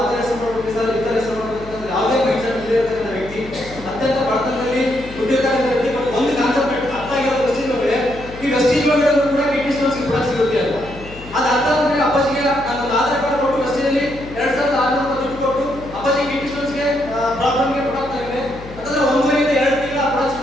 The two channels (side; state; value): left; noise; hum, 15 dB below the sound